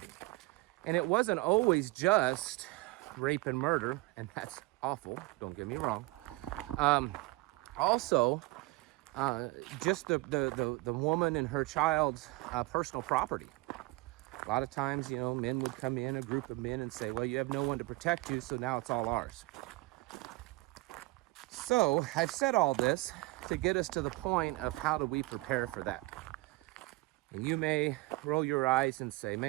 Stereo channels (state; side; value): quieter; left; 21.7 dB